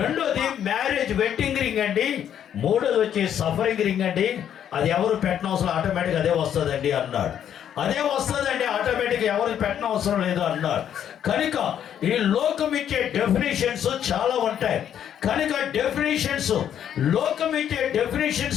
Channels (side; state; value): right; quieter; 9.6 dB